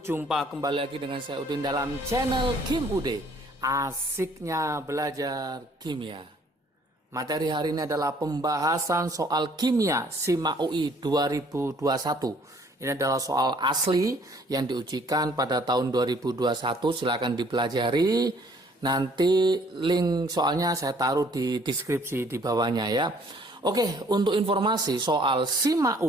kembali lagi dengan saya Udin dalam channel Kim Ude. Asiknya belajar kimia. Materi hari ini adalah pembahasan soal kimia SIMA UI 2021. Ini adalah soal asli yang diujikan pada tahun 2021. Silakan dipelajari. Nanti link soalnya saya taruh di deskripsi di bawahnya ya. Oke, untuk informasi soal SIMA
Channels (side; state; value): both; normal; correlation 0.60